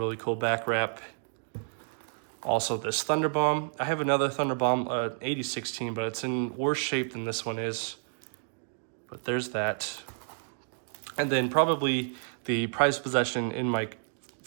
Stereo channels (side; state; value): left; silent; digital silence